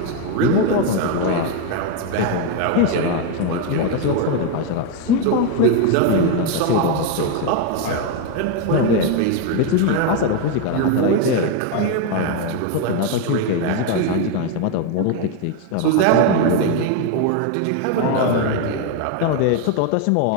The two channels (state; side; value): different; both; correlation 0.01